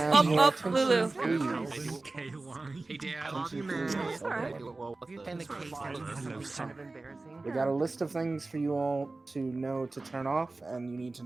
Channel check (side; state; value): left; quieter; 3.3 dB